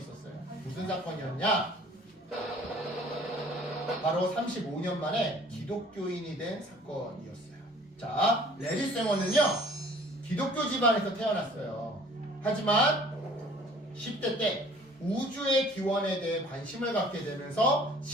무슨 사건이었냐? 바로 35년 만에 기독교인이 된 사건이었어요. 자, 레리 쌩어는요. 기독교 집안에서 태어났어요. 하지만 10대 때 우주의 기원에 대해 관심을 갖게 되면서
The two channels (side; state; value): both; normal; correlation 0.52